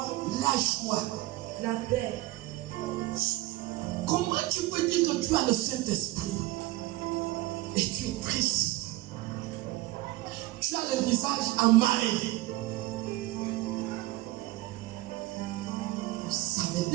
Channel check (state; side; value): quieter; left; 18.3 dB